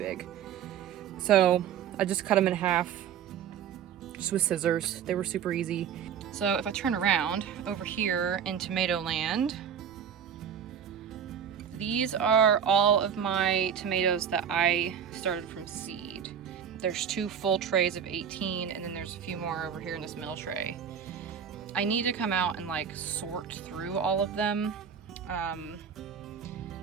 So I just cut them in half just with scissors. They were super easy. So if I turn around over here in tomato land, these are all of my tomatoes that I started from seed. There's 2 full trays of 18, and then there's a few more over here in this middle tray. I need to come out and like sort through all of them.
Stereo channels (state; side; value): quieter; left; 8.1 dB